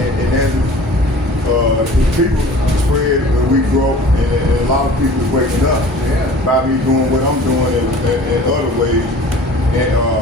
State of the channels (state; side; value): normal; both; correlation 0.45